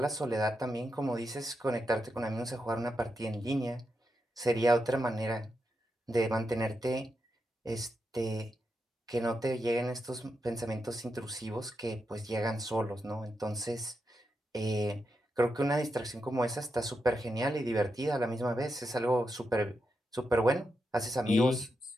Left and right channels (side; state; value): both; normal; correlation 0.86